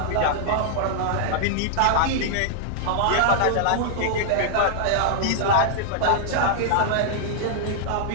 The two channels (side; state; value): both; different; correlation -0.01